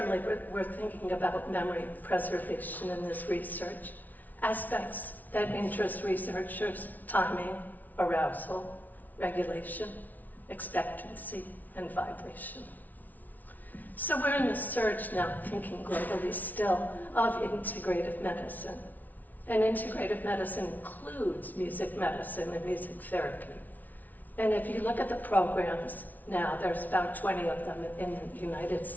we're thinking about memory preservation in this research, aspects that interest researchers: timing, arousal, regulation, expectancy, and vibration. So we're in the surge now, thinking globally still, of integrative medicine. And integrative medicine includes music medicine and music therapy. And if you look at the programs now, there's about 20 of them in the United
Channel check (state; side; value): late; right; 0.079 ms